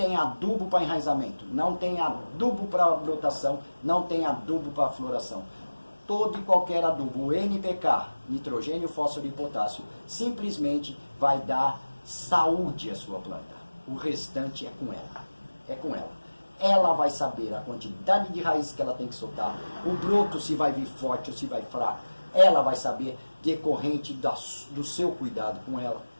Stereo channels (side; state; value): both; inverted; correlation -1.00